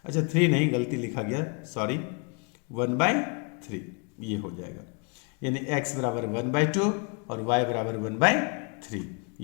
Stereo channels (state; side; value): quieter; right; 34.5 dB